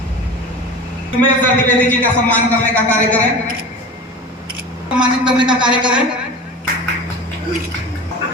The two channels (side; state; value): both; normal; correlation 0.33